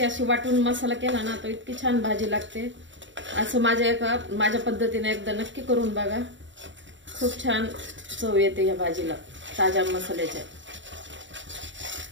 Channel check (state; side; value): late; left; 0.54 ms